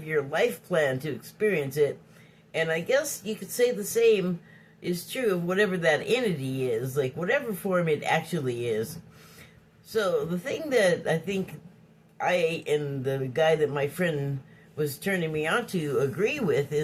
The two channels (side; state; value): both; identical; correlation 1.00